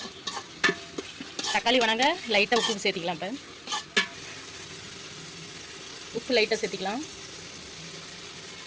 தக்காளி வணங்க லைட்டாக உப்பு சேர்த்திக்கலாம். இப்போ உப்பு லைட்டாக சேர்த்திக்கலாம்.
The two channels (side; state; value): both; identical; correlation 1.00